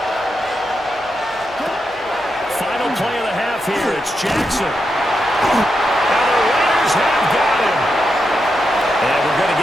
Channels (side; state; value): left; noise; hum, 26 dB below the sound